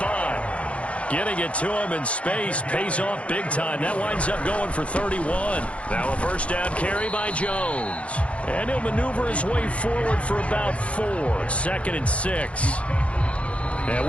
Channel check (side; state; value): right; late; 0.062 ms